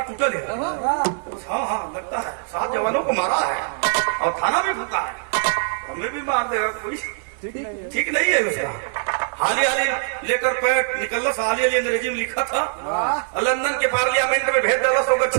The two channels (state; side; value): silent; left; 61 dB below the other